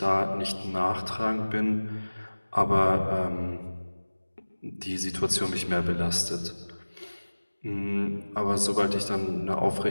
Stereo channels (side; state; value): both; inverted; correlation -1.00